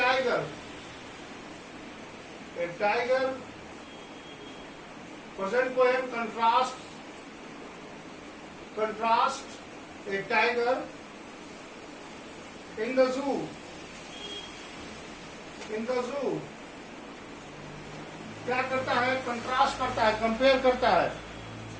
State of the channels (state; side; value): identical; both; correlation 1.00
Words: present poem contrast a tiger in the zoo, क्या करता है, contrast करता है, compare करता है.